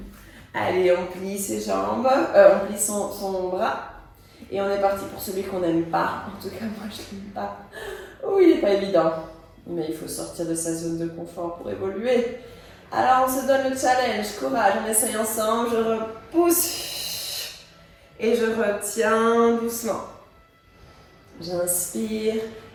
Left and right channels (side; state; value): both; identical; correlation 1.00